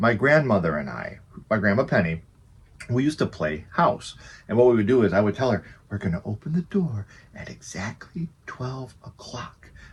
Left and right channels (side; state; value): both; identical; correlation 1.00